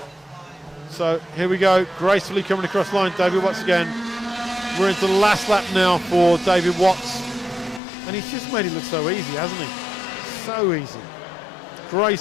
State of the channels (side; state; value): right; drops out; at 7.8 s